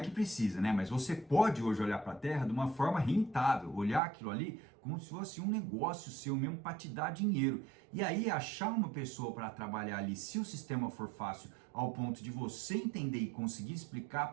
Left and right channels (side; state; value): left; drops out; at 4.0 s